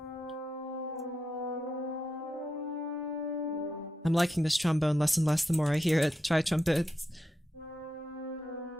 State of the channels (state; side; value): normal; both; correlation 0.85